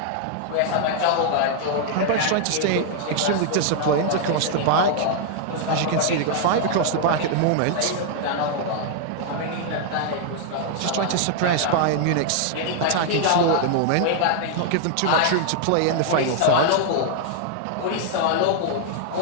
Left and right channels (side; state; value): both; different; correlation 0.00